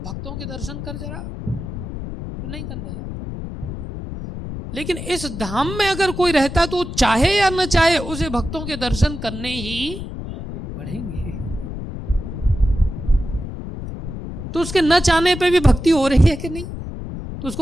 भक्तों के दर्शन कर जरा, तो नहीं करने जाता। लेकिन इस धाम में अगर कोई रहता तो चाहे या न चाहे उसे भक्तों के दर्शन करने ही पड़ेंगे। तो उसके न चाहने पे भी भक्ति हो रही है कि नहीं? तो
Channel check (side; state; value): left; noise; rumble, 8 dB below the sound